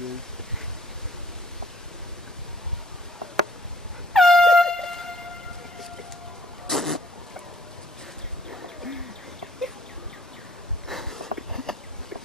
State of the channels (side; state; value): both; normal; correlation 0.59